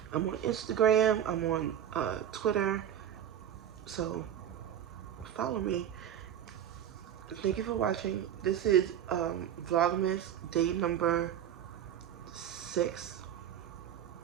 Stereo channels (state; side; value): quieter; left; 10.1 dB